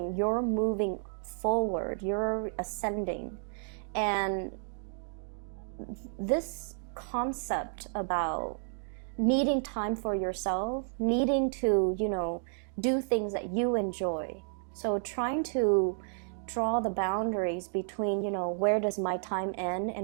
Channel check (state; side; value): silent; left; digital silence